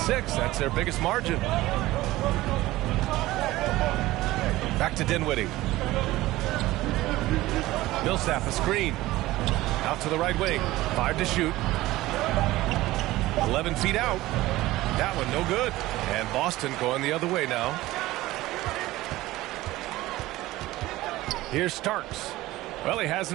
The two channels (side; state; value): left; quieter; 17.5 dB